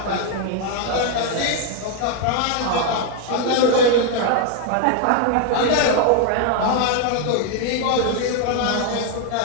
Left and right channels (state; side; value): different; both; correlation 0.00